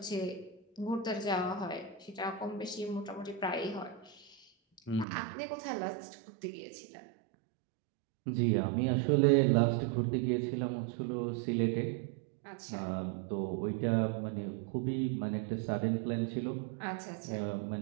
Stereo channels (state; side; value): drops out; left; at 5.1 s